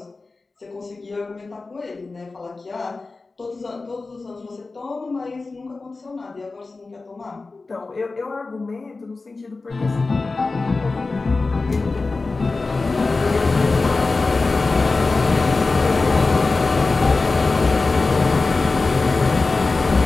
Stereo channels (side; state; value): right; quieter; 3.7 dB